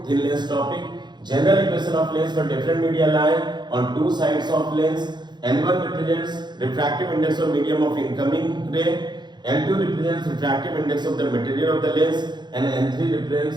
thin lens topic. General equation of lens for different media lie on two sides of lens. N1 represents refractive index of medium of incoming ray, N2 represents refractive index of the material of the lens, and N3 represents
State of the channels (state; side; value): late; left; 0.21 ms